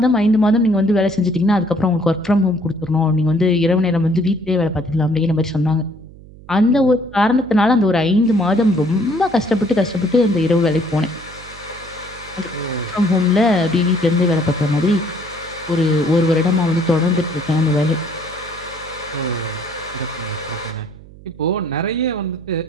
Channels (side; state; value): right; noise; hum, 20 dB below the sound